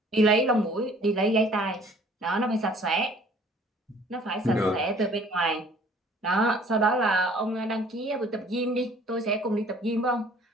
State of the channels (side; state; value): both; normal; correlation 0.54